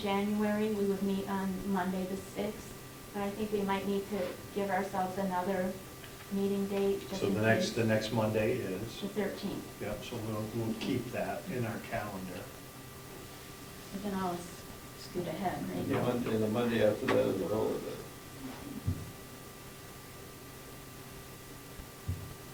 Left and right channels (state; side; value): identical; both; correlation 1.00